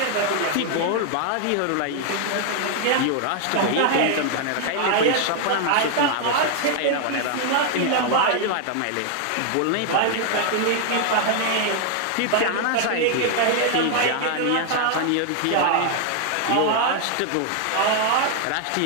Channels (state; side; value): different; both; correlation 0.00